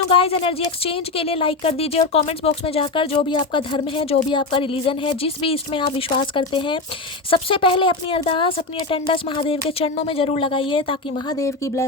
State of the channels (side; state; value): right; quieter; 3.5 dB